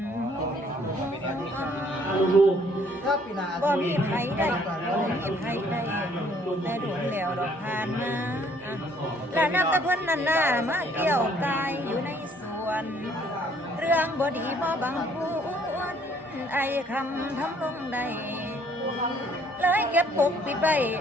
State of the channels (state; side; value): normal; both; correlation 0.62